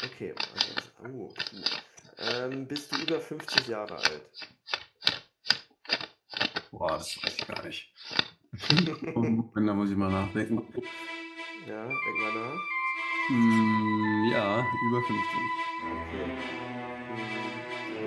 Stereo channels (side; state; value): both; identical; correlation 1.00